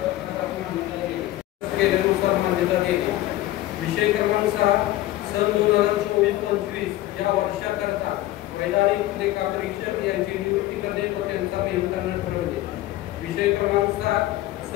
केल्यानुसार मान्यता देते. विषय क्रमांक 6 सन 2024-25 या वर्षाकरता वैधानिक लेखा परीक्षक यांची नियुक्ती करणे व त्यांचा नेमकांना ठरवणे. विषय क्रमांक 7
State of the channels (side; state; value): right; quieter; 15.8 dB